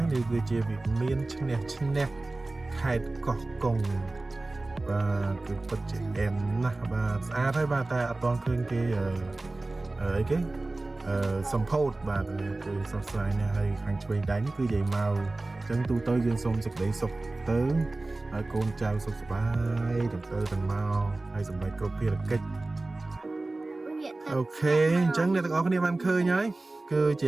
យនេះគឺជាវិមានឈ្នះខេត្តកោះកុងបាទគឺពិតជាអែមណាស់បាទស្អាតហើយបាទតែអត់ទាន់ឃើញគេអីគេសម្ពោធបាទគឺសោកស្ដាយណាស់ហើយខាងឆ្វេងដៃនេះគឺនិយាយមកចឹងទូទៅយើងសូមសេចក្តីសុខទៅហើយកូនចៅសុខសប្បាយទាំងទៅទាំងមកហើយសម្រាប់គ្រប់ភារកិច្ចអូខេអញ្ចឹងអ្នកទាំងអស់គ្នាបានឃើញហើយគឺជា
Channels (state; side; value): quieter; left; 3.0 dB